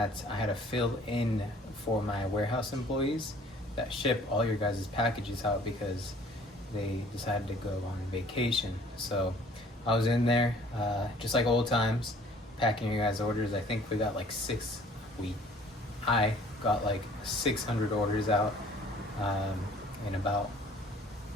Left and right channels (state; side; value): normal; both; correlation 0.54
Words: I had to fill in for my warehouse employees that ship all your guys' packages out because they decided to go on vacation. So I was in there, just like old times, packing your guys' orders. I think we got like I got like 600 orders out in about